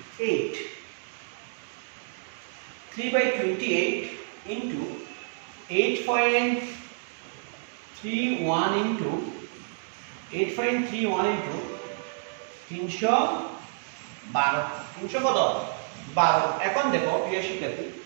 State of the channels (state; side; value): silent; left; digital silence